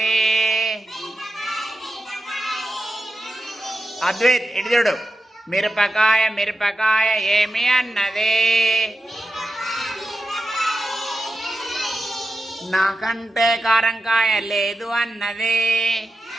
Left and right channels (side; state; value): both; normal; correlation 0.90